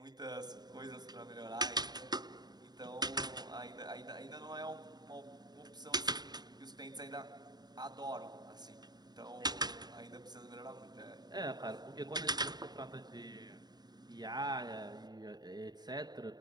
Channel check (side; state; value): left; late; 0.20 ms